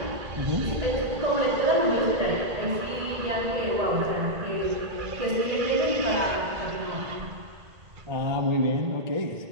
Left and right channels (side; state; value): left; late; 1.8 ms